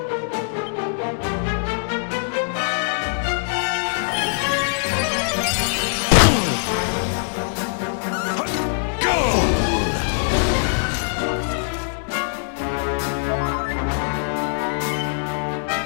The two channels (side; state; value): right; silent; digital silence